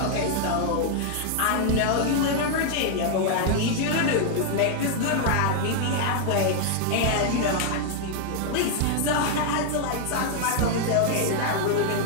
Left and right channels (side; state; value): both; different; correlation 0.00